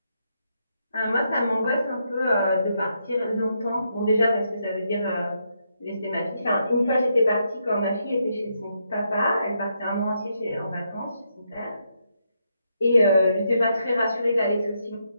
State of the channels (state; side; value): inverted; both; correlation -0.79